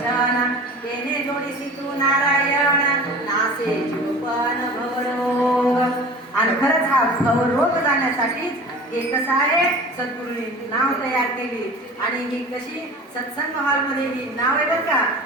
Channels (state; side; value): normal; both; correlation 0.39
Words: तेने जोडीसी तू नारायण, नासे जीवपण भवरोग. आणि खरंच हा भवरोग जाण्यासाठीच हे कसं आहे, सद्गुरूंनी नाव तयार केली. आणि ही कशी सत्संग हॉलमध्ये ही नाव आहे बरं का.